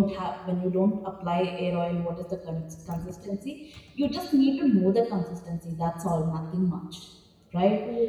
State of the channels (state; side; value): identical; both; correlation 1.00